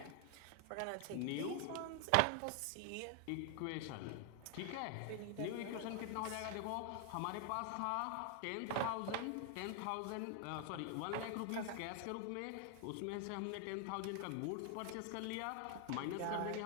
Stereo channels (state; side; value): different; both; correlation 0.00